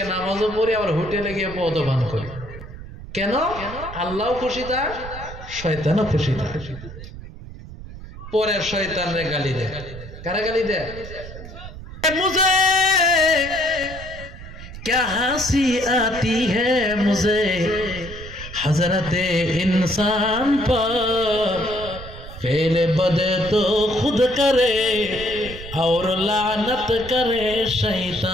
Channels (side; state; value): right; noise; rumble, 13 dB below the sound